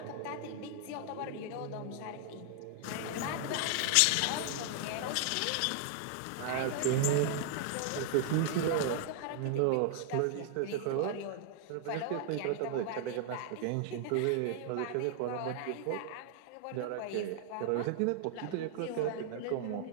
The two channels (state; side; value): different; both; correlation 0.00